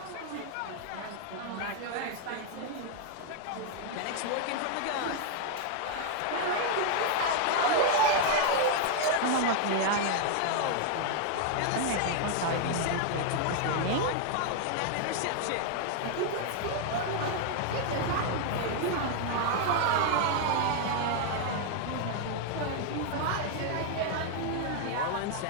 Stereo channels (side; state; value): both; different; correlation 0.00